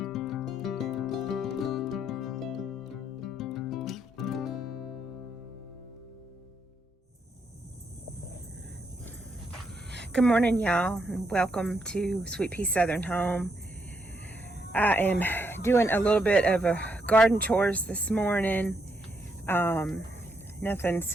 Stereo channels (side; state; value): both; normal; correlation 0.77